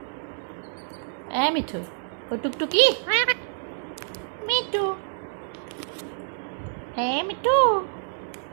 মিঠু ও টুকটুকি মিঠু মিঠু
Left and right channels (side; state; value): left; silent; 60 dB below the other